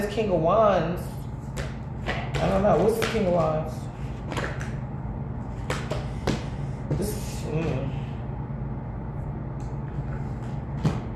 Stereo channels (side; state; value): both; identical; correlation 1.00